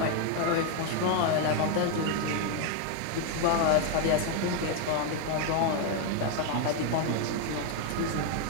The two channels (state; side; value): different; both; correlation 0.01